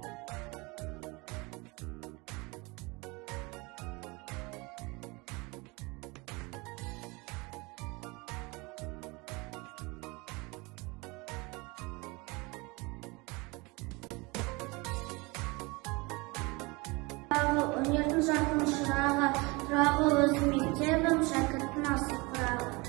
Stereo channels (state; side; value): quieter; left; 25.8 dB